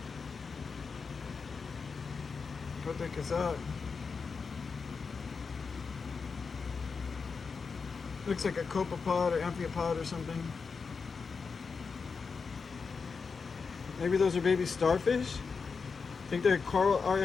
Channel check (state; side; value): quieter; right; 5.1 dB